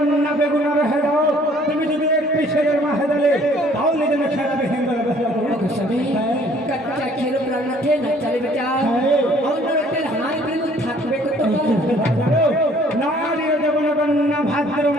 বেগুনার হেদাও তুমি যদি একটি ছেলের মা হেদালে তাহলে যেন খেলাবে কাচ্চা খেলো প্রাণনাথে না চালে বেটা অন্যরতের হাই প্রেম থাকবে কত নারী দেবন কন্যা ভাদ্র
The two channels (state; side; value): normal; both; correlation 0.58